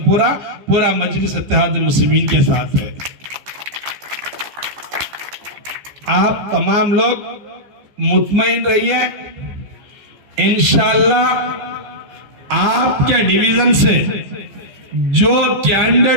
पूरा मजलिस इत्तेहाद मुस्लिमीन के साथ है। आप तमाम लोग मुतमईन रहिए, इंशाल्लाह आपके डिवीजन से जो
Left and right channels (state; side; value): late; left; 14 ms